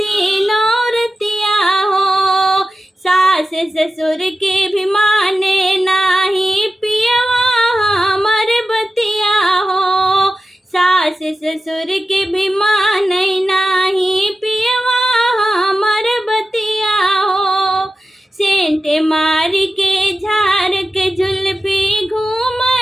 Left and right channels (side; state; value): both; normal; correlation 0.93